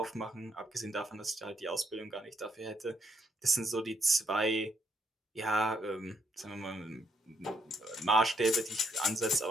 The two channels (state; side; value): normal; both; correlation 0.73